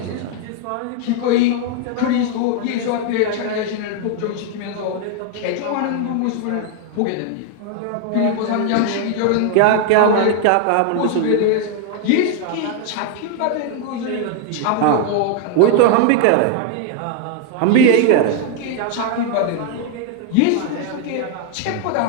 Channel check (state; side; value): different; both; correlation 0.00